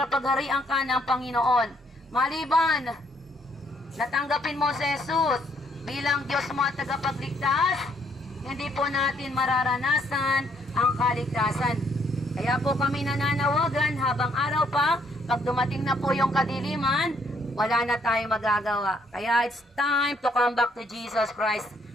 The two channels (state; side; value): normal; both; correlation 0.69